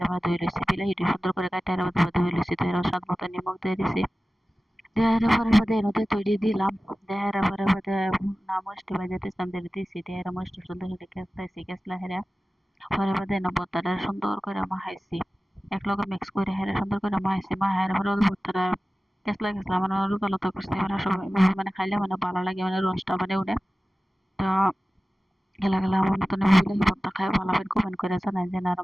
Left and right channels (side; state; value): both; normal; correlation 0.96